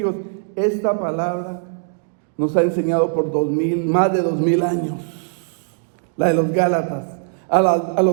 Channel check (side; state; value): left; silent; digital silence